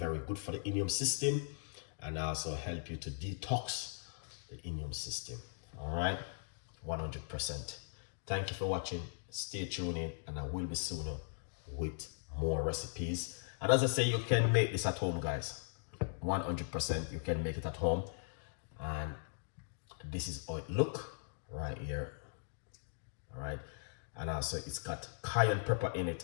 good for the immune system, and also help you to detox the immune system. All right, 100%. Thank you for watching. Stay tuned in, and I will be sooner with more recipes. And as I say, you can make this at home, guys. 100% you can make it at home. And this is how it look right here. All right, and also it's got cayenne pepper in it,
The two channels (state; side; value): silent; right; digital silence